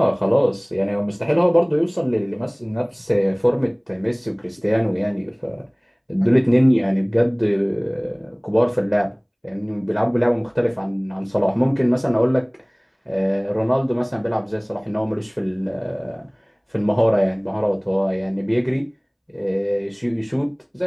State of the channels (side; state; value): both; identical; correlation 1.00